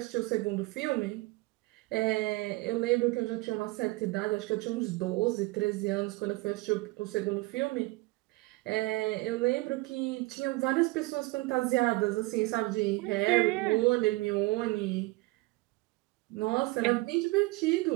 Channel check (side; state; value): left; quieter; 22.8 dB